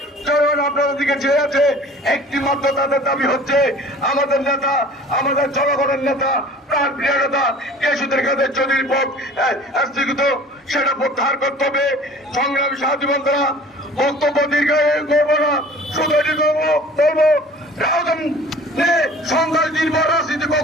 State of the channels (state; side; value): normal; both; correlation 0.46